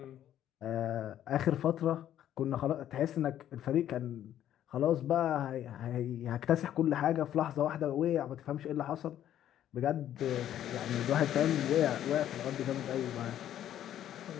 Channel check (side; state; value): right; quieter; 11.3 dB